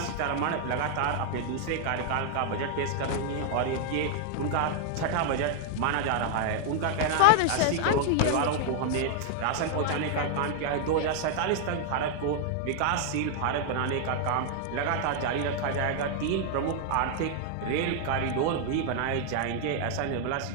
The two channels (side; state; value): both; different; correlation 0.00